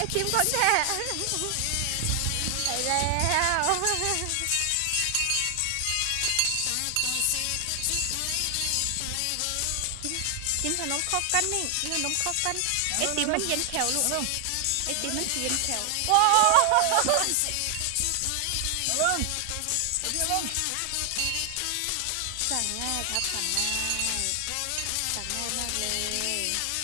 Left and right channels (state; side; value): different; both; correlation 0.00